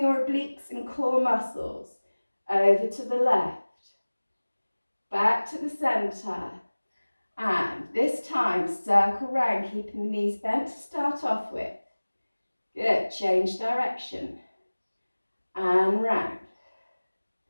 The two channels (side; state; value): both; inverted; correlation -1.00